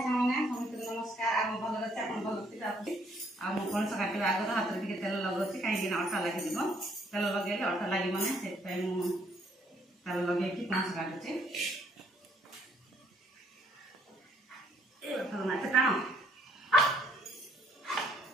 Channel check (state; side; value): normal; both; correlation 0.66